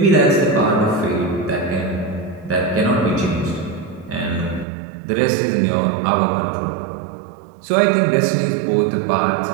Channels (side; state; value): left; drops out; at 4.7 s